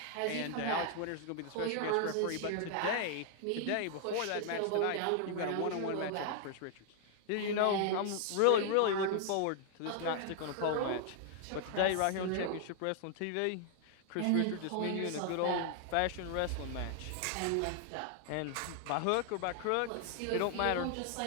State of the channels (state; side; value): different; both; correlation 0.00